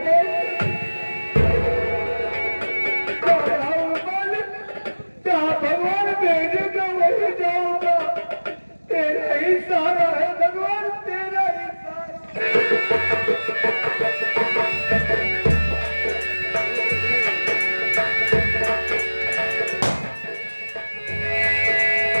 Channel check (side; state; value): both; inverted; correlation -1.00